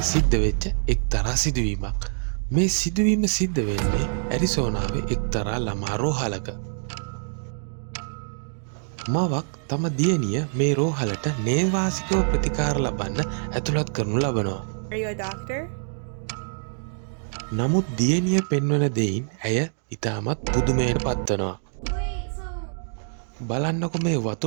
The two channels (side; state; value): left; silent; digital silence